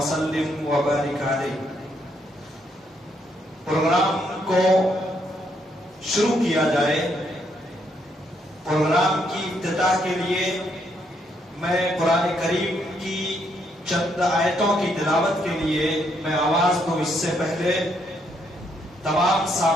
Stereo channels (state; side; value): normal; both; correlation 0.74